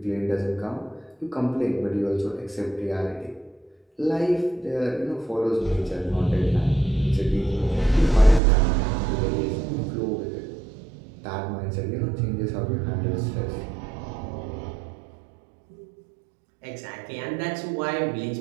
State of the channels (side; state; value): left; drops out; at 8.4 s